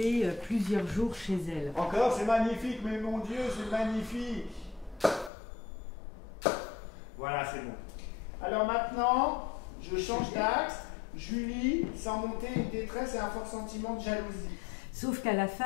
plusieurs jours chez elle. Encore, c'est magnifique, mais mon Dieu, c'est magnifique. Voilà, c'est bon. Alors maintenant, je change d'axe. Julie, sans monter une détresse et un fort sentiment de jalousie. Sauf qu'à la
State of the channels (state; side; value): drops out; right; at 5.3 s